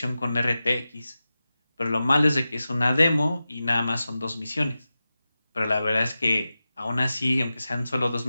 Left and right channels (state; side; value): inverted; both; correlation -0.94